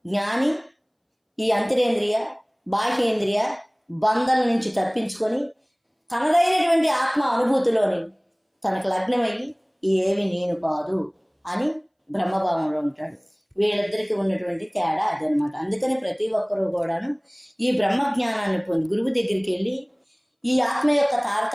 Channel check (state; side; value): identical; both; correlation 1.00